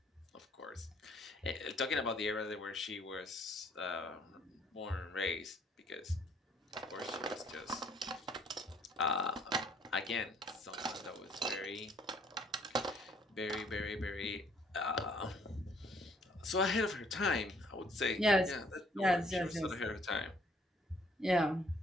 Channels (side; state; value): both; normal; correlation 0.63